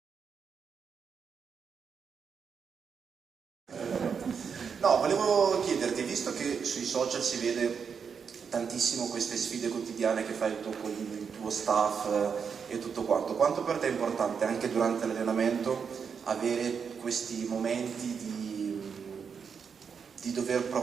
No, volevo chiederti, visto che sui social si vede tantissimo queste sfide quotidiane che fai tu con il tuo staff e tutto quanto per te è importante anche durante l'allenamento avere questi momenti di dover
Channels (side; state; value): left; quieter; 6.4 dB